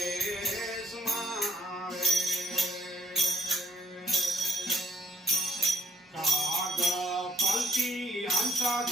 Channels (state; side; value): normal; both; correlation 0.68